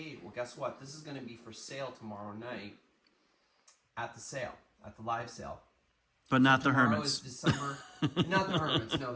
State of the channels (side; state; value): both; identical; correlation 1.00